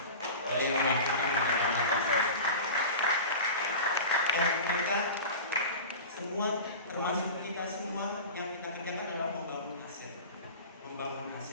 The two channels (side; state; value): both; inverted; correlation -0.33